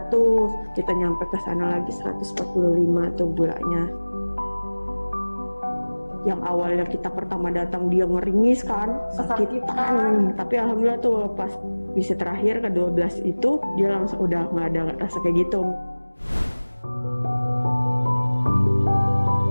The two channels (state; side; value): inverted; both; correlation -1.00